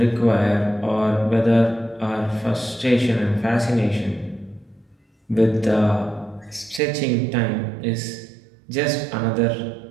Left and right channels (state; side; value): drops out; left; at 6.8 s